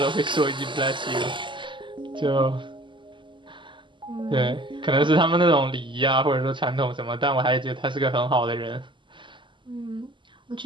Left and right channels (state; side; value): late; left; 0.24 ms